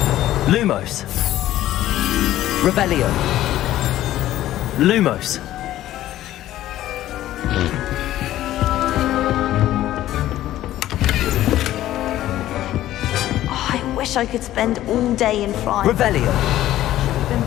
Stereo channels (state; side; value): quieter; right; 13.9 dB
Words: Lumos. Revelio. Lumos. I wish I could spend all day in France. Revelio. Been